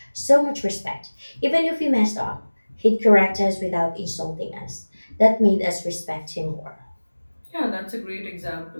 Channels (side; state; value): both; inverted; correlation -1.00